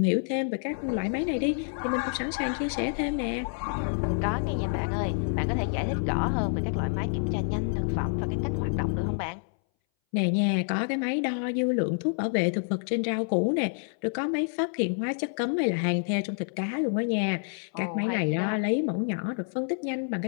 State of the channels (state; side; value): silent; right; 59 dB below the other